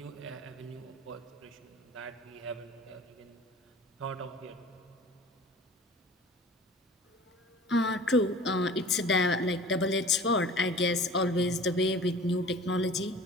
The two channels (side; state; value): both; normal; correlation 0.44